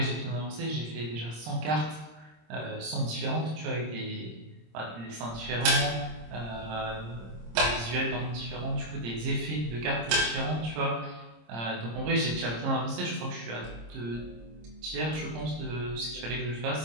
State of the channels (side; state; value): left; late; 26 ms